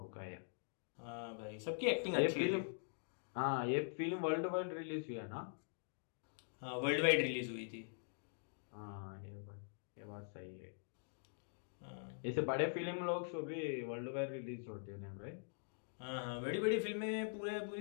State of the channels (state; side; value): silent; right; digital silence